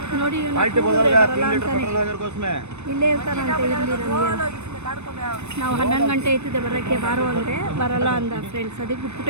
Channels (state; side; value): late; left; 0.82 ms